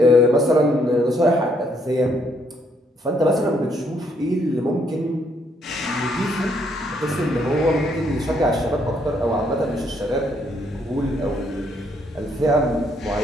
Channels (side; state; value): both; normal; correlation 0.70